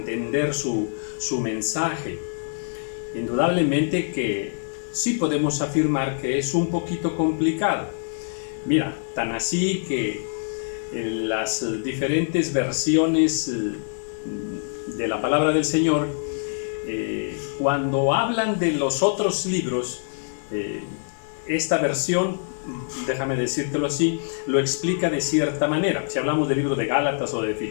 su mensaje? Indudablemente que sí podemos afirmar que es un poquito complicado. Mira, tan así que las diferentes versiones de la palabra del Señor, cuando hablan de los otros libros, esta versión, déjame decírtelo así, lo explica de cierta manera. Si hablamos del libro de Gálatas o de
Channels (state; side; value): silent; right; digital silence